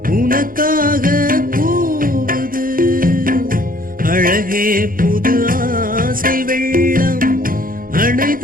அழகே புது ஆசை வெள்ளம் அணை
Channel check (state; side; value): late; left; 0.41 ms